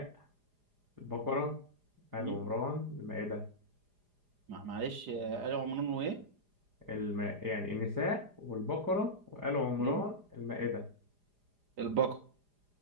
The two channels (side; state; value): left; late; 4.9 ms